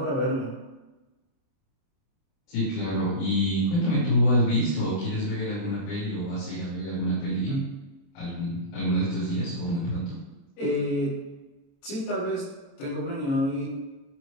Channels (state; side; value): late; right; 29 ms